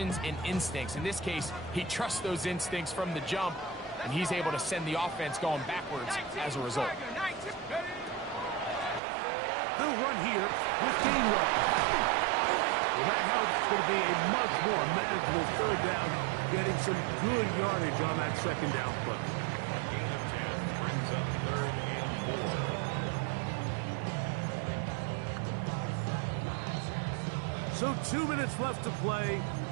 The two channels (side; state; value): left; drops out; at 9.0 s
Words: and instincts. In this case, he trusts those instincts from the jump, and he's able to send the offense going backwards as a result. They'll run here with Gainwell. Well, that helps. It's going to be a much more manageable 3rd down, getting some good yardage on that 2nd down play. A gain of 10 brings up 3rd and 4. So 2 minutes left to play